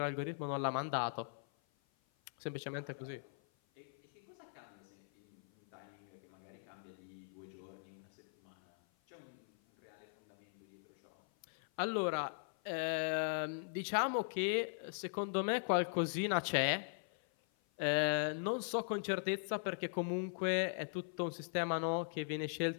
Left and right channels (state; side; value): silent; right; 51 dB below the other